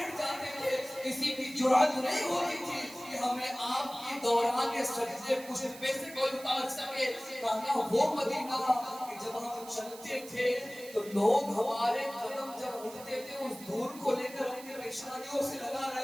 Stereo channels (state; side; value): noise; right; hiss, 16 dB below the sound